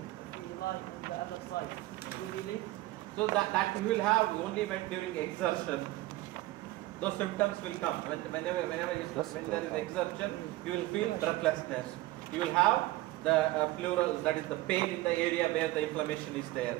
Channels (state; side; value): quieter; left; 18.0 dB